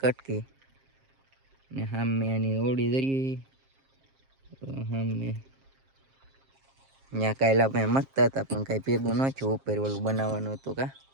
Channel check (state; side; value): late; left; 7.5 ms